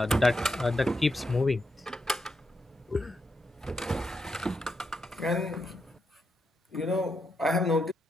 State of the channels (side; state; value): both; normal; correlation 0.83